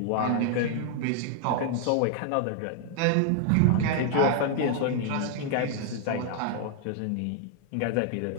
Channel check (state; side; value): different; both; correlation 0.00